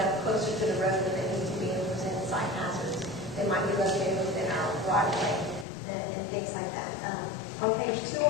closer to the road than they need to be and present site hazards. They might be located within our right of way and things like that. On page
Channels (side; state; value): right; drops out; at 5.7 s